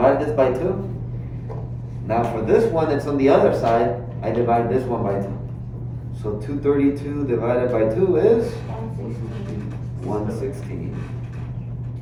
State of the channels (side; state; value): both; identical; correlation 1.00